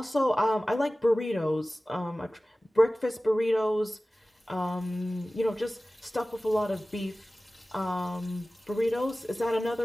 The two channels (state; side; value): normal; both; correlation 0.97